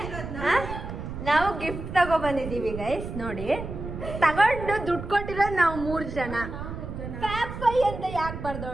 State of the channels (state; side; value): noise; right; rumble, 8 dB below the sound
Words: ನಾವು ಗಿಫ್ಟ್ ತಗೊಬಂದಿದ್ದೀವಿ ಗೈಸ್. ನೋಡಿ, ತಗೊಂಡು ದುಡ್ಡು ಕೊಟ್ಟಿರೋದು ನಾವು 3 ಜನ. ಫ್ಯಾಪ್ ಅಂತ ಯಾಕೆ